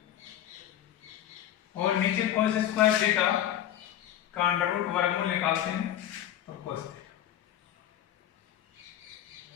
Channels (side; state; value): right; quieter; 11.4 dB